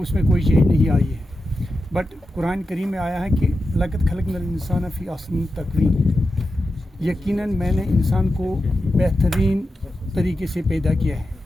اس میں کوئی چینج نہیں آئی ہے۔ بٹ قرآن کریم میں آیا ہے کہ لقد خلقنا الانسان فی احسن تقویم، یقیناً میں نے انسان کو بہترین طریقے سے پیدا کیا ہے،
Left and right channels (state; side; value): normal; both; correlation 0.90